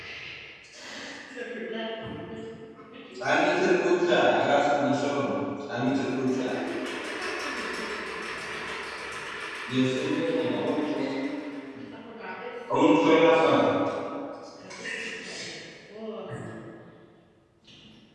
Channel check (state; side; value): identical; both; correlation 1.00